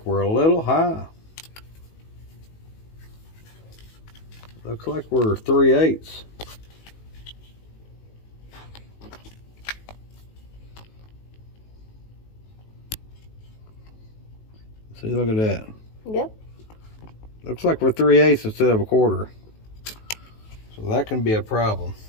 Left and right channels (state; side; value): late; right; 19 ms